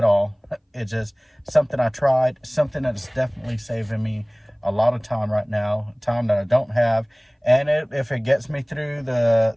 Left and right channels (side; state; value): both; identical; correlation 1.00